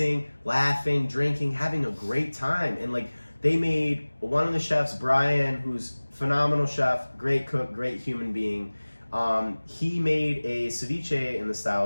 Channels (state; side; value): inverted; both; correlation -1.00